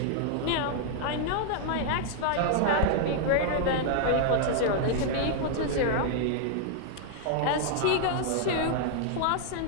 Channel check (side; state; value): both; different; correlation 0.00